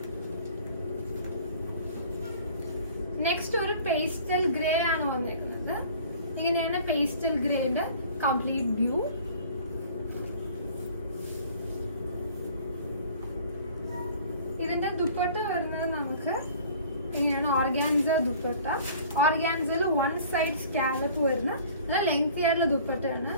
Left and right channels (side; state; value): both; inverted; correlation -0.49